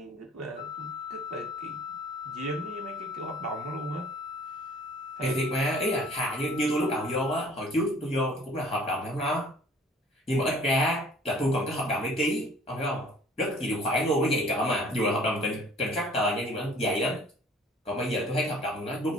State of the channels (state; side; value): normal; both; correlation 0.52